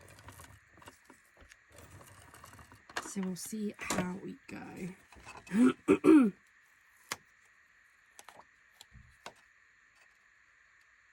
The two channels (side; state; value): both; identical; correlation 1.00